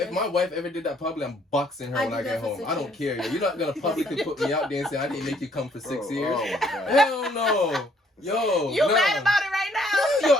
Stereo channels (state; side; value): normal; both; correlation 0.65